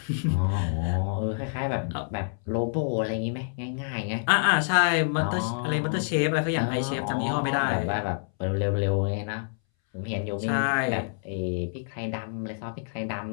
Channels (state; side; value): silent; right; 60 dB below the other